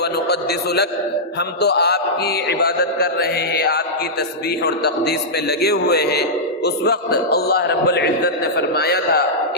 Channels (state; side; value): normal; both; correlation -0.11